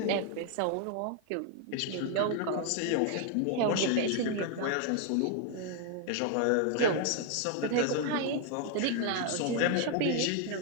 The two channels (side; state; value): both; different; correlation 0.00